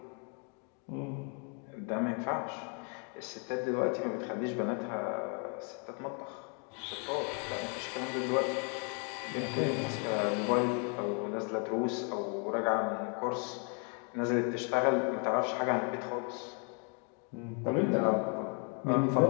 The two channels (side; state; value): right; quieter; 38.5 dB